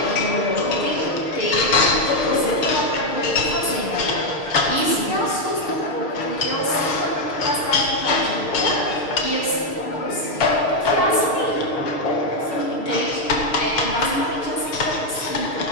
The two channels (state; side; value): late; right; 6.5 ms